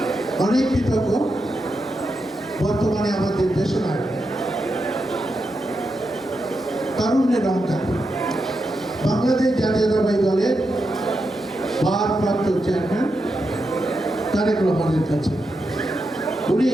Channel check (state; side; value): normal; both; correlation 0.86